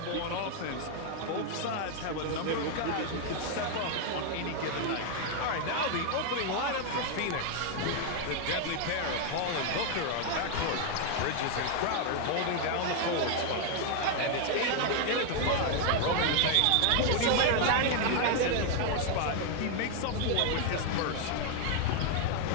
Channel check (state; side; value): different; both; correlation 0.00